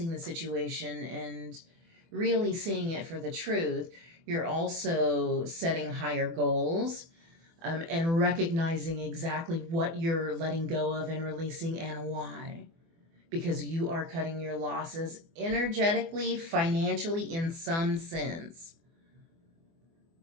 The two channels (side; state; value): left; late; 24 ms